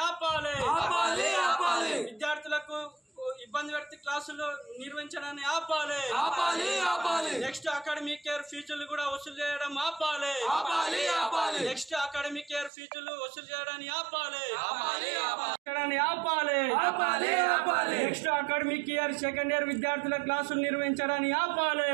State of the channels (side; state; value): left; drops out; at 12.7 s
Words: ఆపాలి ఆపాలి ఆపాలి విద్యార్థులకు ఇబ్బంది పెడుతూ క్లాసులు నిర్వహించడాన్ని ఆపాలి ఆపాలి ఆపాలి నెక్స్ట్ అకాడమిక్ ఇయర్ ఫీజులు కూడా వసూలు చేయడం ఆపాలి ఆపాలి ఆపాలి నెక్స్ట్ అకాడమిక్ ఇయర్ ఫీజులు వసూలు చేయడాన్ని ఆపాలి ఆపాలి ఆపాలి ఆపాలి ఆపాలి next academic year second year విద్యార్థుల క్లాసులు నిర్వహించడాన్ని ఆపాలి